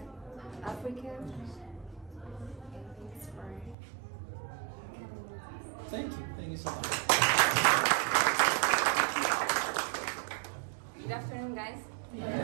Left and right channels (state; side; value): drops out; left; at 3.8 s